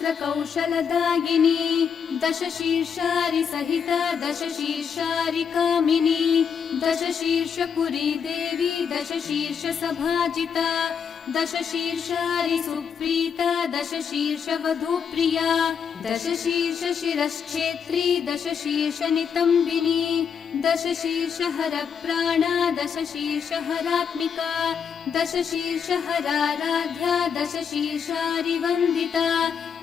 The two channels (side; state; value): right; quieter; 6.9 dB